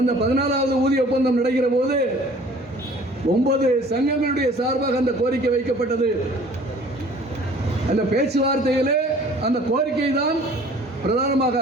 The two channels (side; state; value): both; normal; correlation 0.50